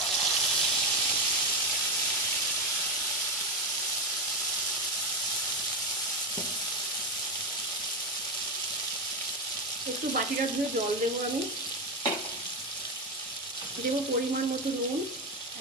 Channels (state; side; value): normal; both; correlation 0.11